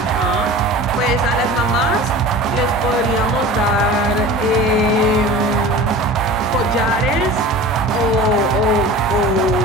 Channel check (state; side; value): normal; both; correlation 0.38